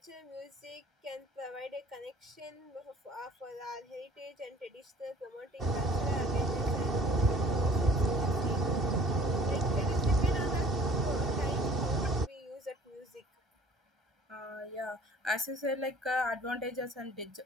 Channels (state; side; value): normal; both; correlation 0.50